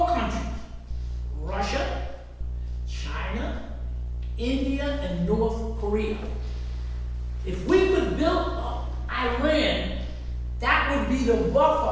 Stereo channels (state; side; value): identical; both; correlation 1.00